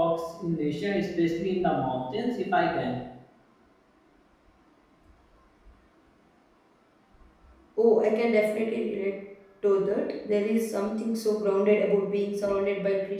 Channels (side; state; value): both; identical; correlation 1.00